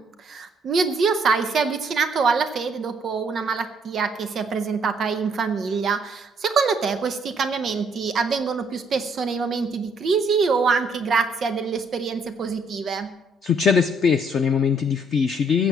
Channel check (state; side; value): normal; both; correlation 0.67